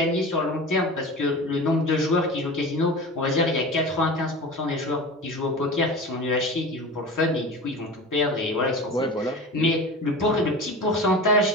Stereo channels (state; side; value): normal; both; correlation 0.33